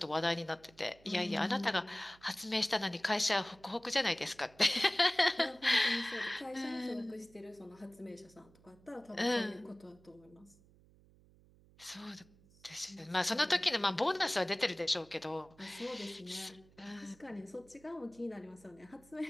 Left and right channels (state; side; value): noise; right; hum, 27 dB below the sound